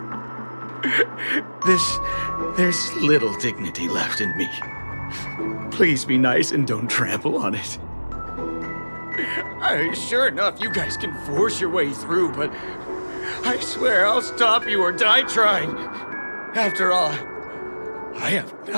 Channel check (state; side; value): inverted; both; correlation -1.00